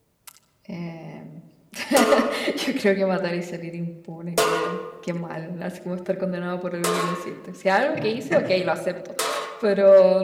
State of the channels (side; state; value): both; identical; correlation 1.00